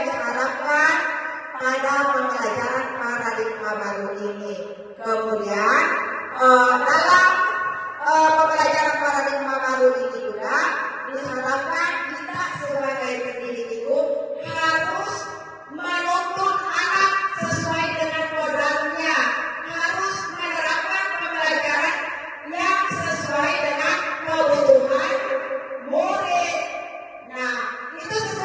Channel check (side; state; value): both; identical; correlation 1.00